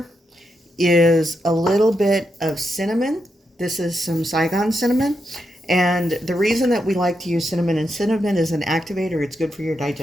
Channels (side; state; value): both; normal; correlation 0.83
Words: is a little bit of cinnamon. This is some Saigon cinnamon. And the reason that we like to use cinnamon, and cinnamon is an activator, it's good for your